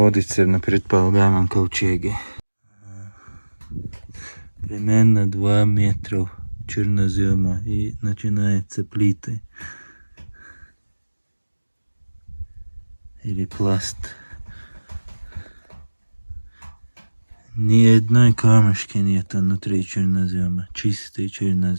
на предполагаемом ковчеге. Примерно 2 метра чернозема и начинаются плиты. Или пласт. Ни одной камешки нет внутри чернозема. Чистый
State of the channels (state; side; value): inverted; both; correlation -1.00